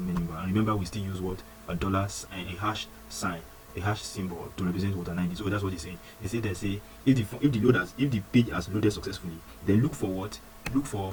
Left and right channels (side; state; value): both; identical; correlation 1.00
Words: menu bar, and remember we still use what, a hash sign, a hash symbol to represent what, an ID. So that's what he's saying. They say if the page has loaded successfully, then look for